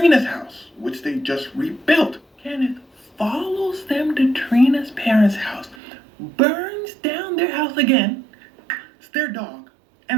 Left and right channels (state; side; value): drops out; left; at 5.8 s